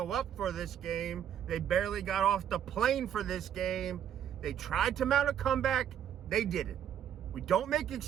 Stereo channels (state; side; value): quieter; left; 9.6 dB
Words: up for this game. They barely got off the plane for this game. They tried to mount a comeback. They didn't. We don't make